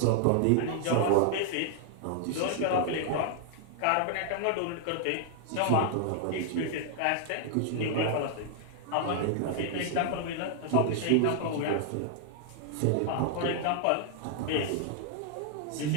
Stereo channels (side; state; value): both; different; correlation -0.01